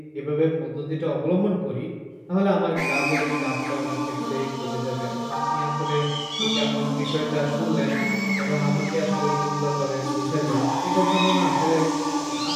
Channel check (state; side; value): identical; both; correlation 1.00